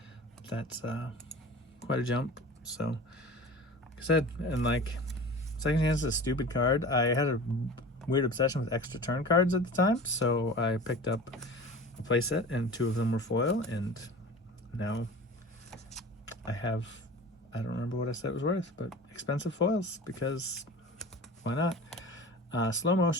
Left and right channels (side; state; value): both; normal; correlation 0.37